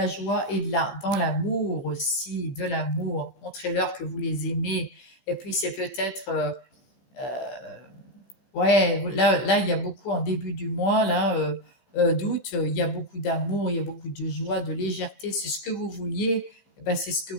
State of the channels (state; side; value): late; right; 15 ms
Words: joie est là, dans l'amour aussi, de l'amour. Montrez-leur que vous les aimez. Et puis, c'est peut-être, ouais, là, il y a beaucoup en début du mois, là, d'août, il y a beaucoup d'amour, il y a beaucoup de joie, de légèreté. C'est ce que vous vouliez, eh ben, c'est ce que